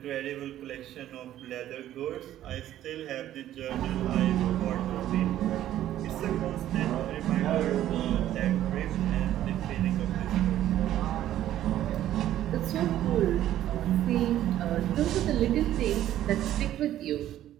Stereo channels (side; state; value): left; quieter; 12.6 dB